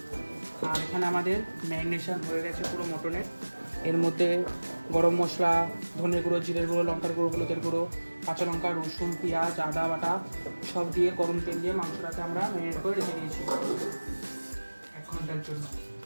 আর এখানে আমাদের ম্যারিনেশন হয়ে গেছে পুরো মটনের। এর মধ্যে গরম মশলা, ধনে গুঁড়ো, জিরের গুঁড়ো, লঙ্কার গুঁড়ো, হলুদের গুঁড়ো, কাঁচা লঙ্কা, রসুন, পেঁয়াজ, আদা বাটা সব দিয়ে গরম তেল দিয়ে মাংসটাকে আমরা ম্যারিনেট করে রেখে দিয়েছি 1 ঘন্টার জন্য।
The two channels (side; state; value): both; inverted; correlation -1.00